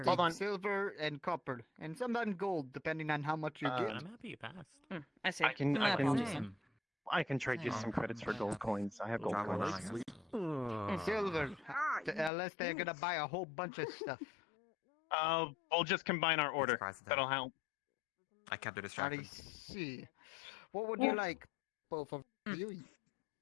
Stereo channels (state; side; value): drops out; right; at 12.3 s